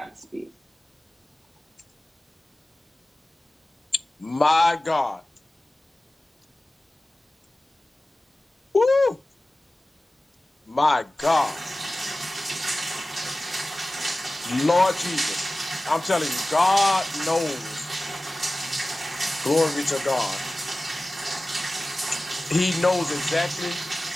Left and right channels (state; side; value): normal; both; correlation 0.97